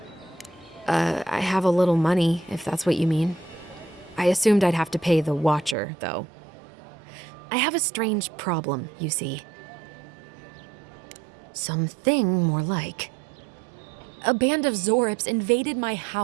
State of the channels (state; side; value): drops out; left; at 5.8 s